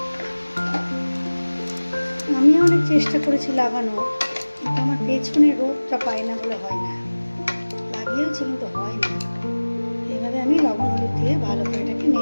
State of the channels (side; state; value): both; inverted; correlation -1.00